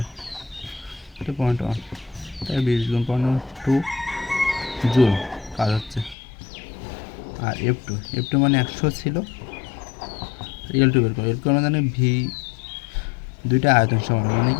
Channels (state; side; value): drops out; right; at 6.2 s